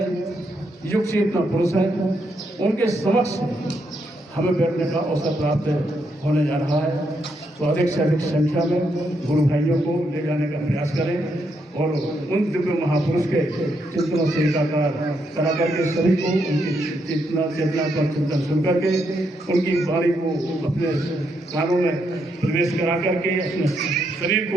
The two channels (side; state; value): both; normal; correlation 0.78